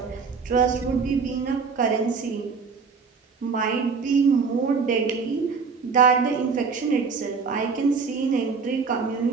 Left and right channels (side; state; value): left; quieter; 5.2 dB